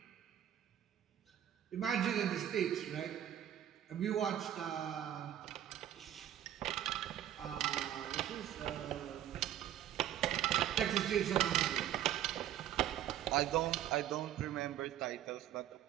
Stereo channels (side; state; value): left; quieter; 11.3 dB